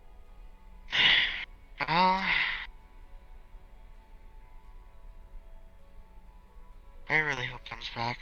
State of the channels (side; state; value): both; identical; correlation 1.00